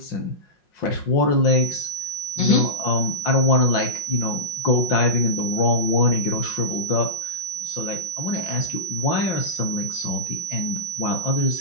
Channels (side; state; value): right; late; 5.6 ms